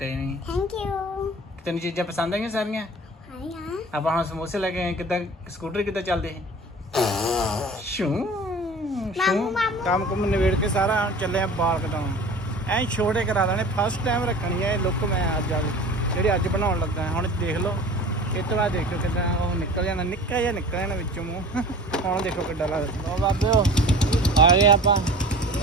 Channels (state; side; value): normal; both; correlation 0.41